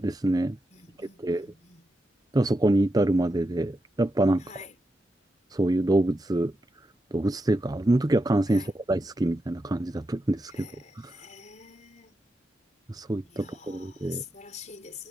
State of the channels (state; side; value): normal; both; correlation 0.87